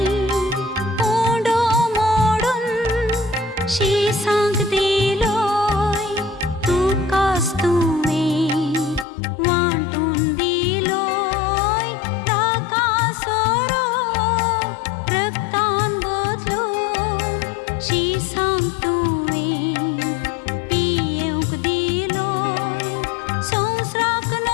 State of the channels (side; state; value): right; drops out; at 9.1 s